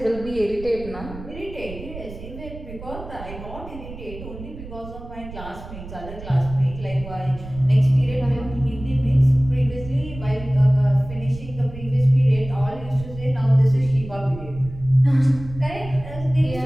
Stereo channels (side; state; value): right; noise; rumble, 13 dB below the sound